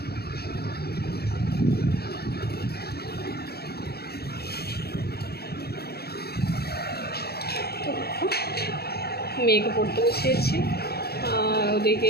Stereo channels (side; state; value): right; late; 0.46 ms